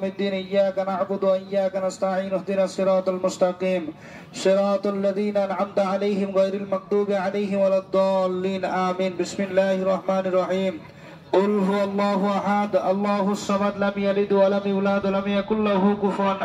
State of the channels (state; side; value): identical; both; correlation 1.00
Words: الدين إياك نعبد وإياك نستعين اهدنا الصراط المستقيم صراط الذين أنعمت عليهم غير المغضوب عليهم ولا الضالين آمين. بسم الله الرحمن الرحيم. قل هو الله أحد الله الصمد لم يلد ولم يولد ولم يكن له كفوا